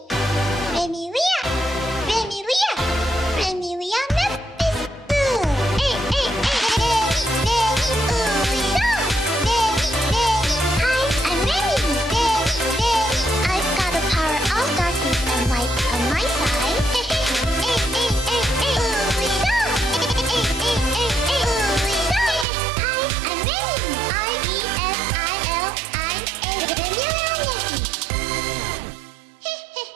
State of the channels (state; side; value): drops out; left; at 22.5 s